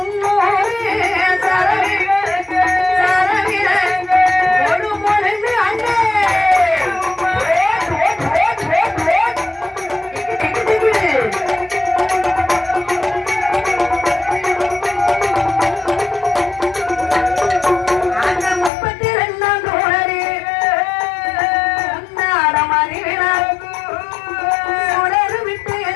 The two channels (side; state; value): right; drops out; at 18.7 s